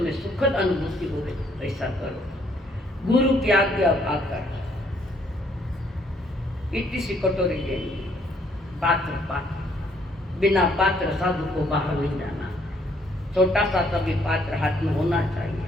सुखद अनुभूति हो वैसा करो। गुरु की आज्ञा पाकर इतनी सी कटोरी लेनी, पात्र, बिना पात्र साधु को बाहर नहीं जाना, छोटा सा तभी पात्र हाथ में होना चाहिए।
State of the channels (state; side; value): normal; both; correlation 0.67